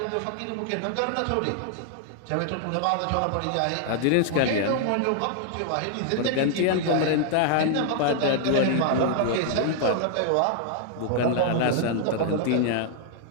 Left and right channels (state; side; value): different; both; correlation 0.00